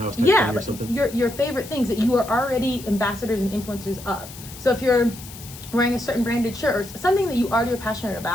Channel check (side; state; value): left; noise; hiss, 15 dB below the sound